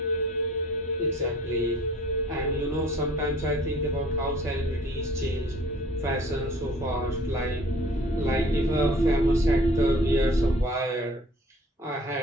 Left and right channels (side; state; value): both; normal; correlation 0.51